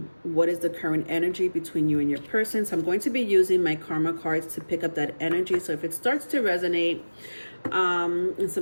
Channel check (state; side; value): inverted; both; correlation -1.00